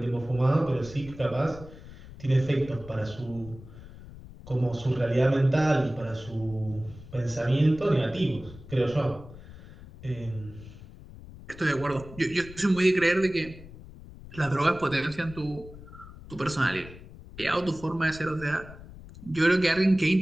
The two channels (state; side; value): noise; left; rumble, 17 dB below the sound